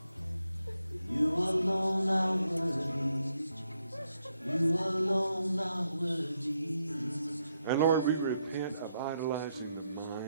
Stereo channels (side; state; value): both; inverted; correlation -0.79